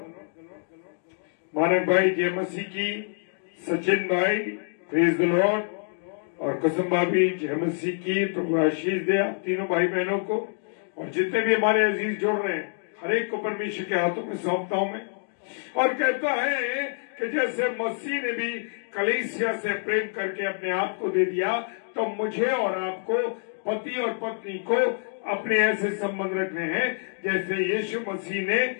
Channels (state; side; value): silent; right; digital silence